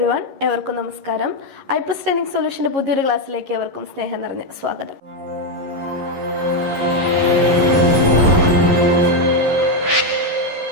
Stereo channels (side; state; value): left; late; 11 ms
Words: എവർക്കും നമസ്കാരം. EyePlus training സൊല്യൂഷന്റെ പുതിയൊരു ക്ലാസ്സിലേക്ക് എവർക്കും സ്നേഹം നിറഞ്ഞ സ്വാഗതം.